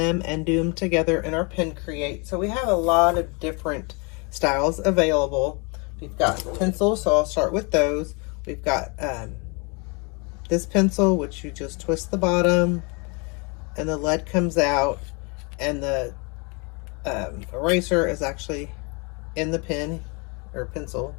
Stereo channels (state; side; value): quieter; right; 31.6 dB